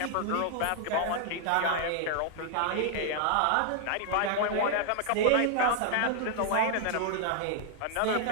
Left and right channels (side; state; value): both; different; correlation 0.00